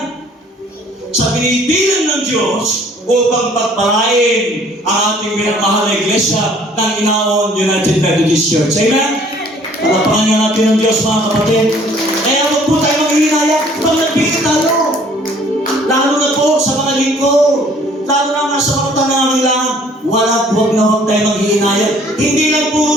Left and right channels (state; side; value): normal; both; correlation 0.57